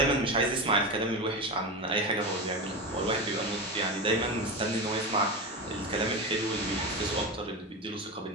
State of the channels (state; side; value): normal; both; correlation 0.20